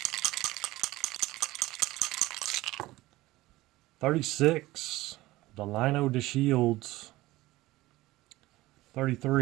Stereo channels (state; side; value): quieter; left; 18.3 dB